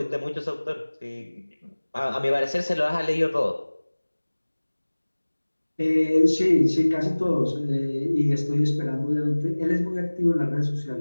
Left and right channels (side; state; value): both; inverted; correlation -1.00